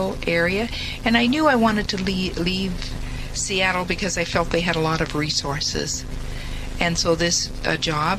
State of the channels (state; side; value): identical; both; correlation 1.00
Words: area, and I knew I wanted to leave Seattle because I felt they had a lot of resources. And so this